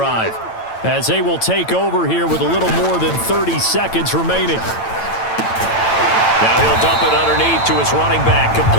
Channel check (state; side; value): late; right; 8.9 ms